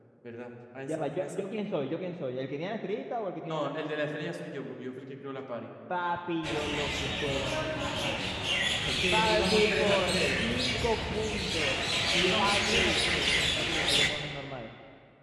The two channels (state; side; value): identical; both; correlation 1.00